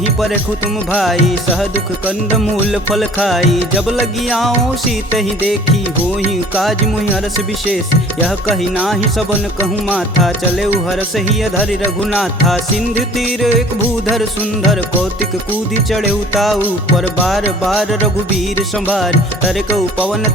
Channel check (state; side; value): normal; both; correlation 0.49